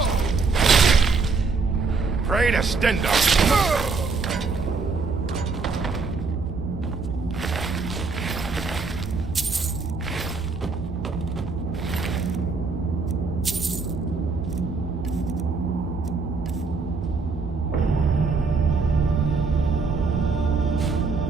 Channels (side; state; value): left; quieter; 4.4 dB